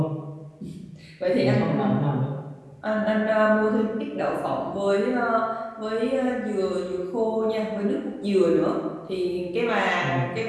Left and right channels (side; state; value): both; identical; correlation 1.00